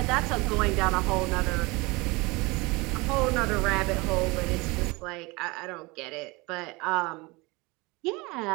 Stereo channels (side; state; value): left; quieter; 24.6 dB